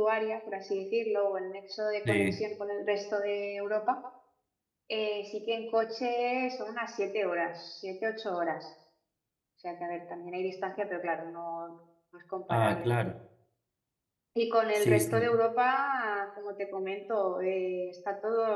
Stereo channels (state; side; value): identical; both; correlation 1.00